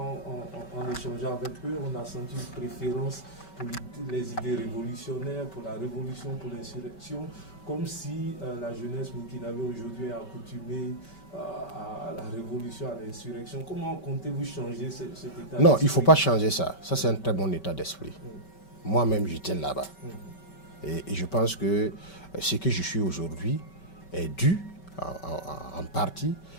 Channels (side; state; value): right; late; 5.2 ms